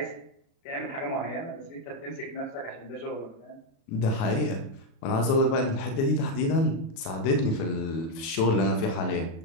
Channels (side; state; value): right; late; 37 ms